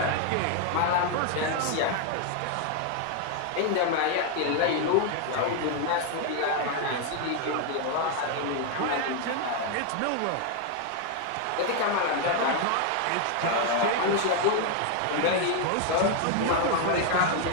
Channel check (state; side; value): different; both; correlation 0.00